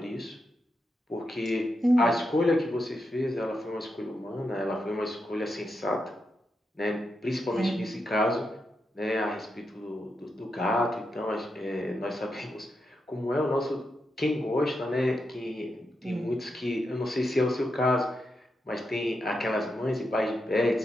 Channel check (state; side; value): normal; both; correlation 0.85